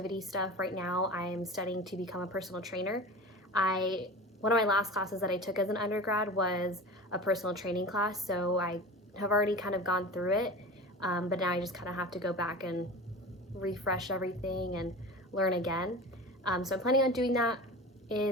stuff. Right now I'm studying to become a personal trainer. One of my last classes that I took as an undergrad was a personal training class, so I have already kind of gone through it, but now I just kind of have to go back and refresh everything and learn again. So I'm planning on doing that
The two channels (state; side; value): normal; both; correlation 0.33